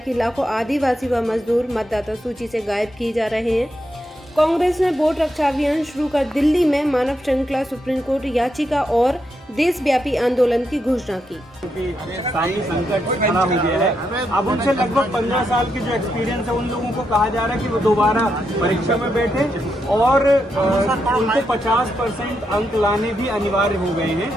कि लाखों आदिवासी व मजदूर मतदाता सूची से गायब किए जा रहे हैं। कांग्रेस ने वोट रक्षा अभियान शुरू कर दिल्ली में मानव श्रृंखला, सुप्रीम कोर्ट याचिका और देशव्यापी आंदोलन की घोषणा की। स्थायी संकट खड़ा हो गया है। अब उनसे लगभग 15 साल के जो एक्सपीरियंस है उन लोगों को कहा जा रहा है कि वो दोबारा परीक्षा में बैठे और उनको 50% अंक लाने भी अनिवार्य हो गए हैं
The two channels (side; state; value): both; normal; correlation 0.82